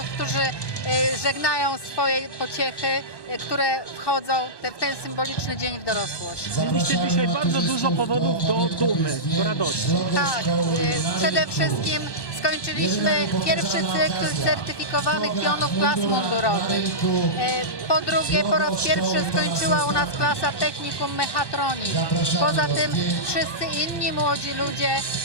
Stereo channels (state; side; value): late; right; 1.1 ms